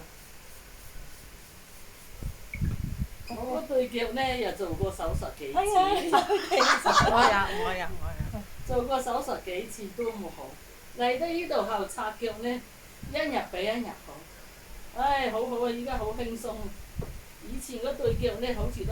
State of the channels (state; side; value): identical; both; correlation 1.00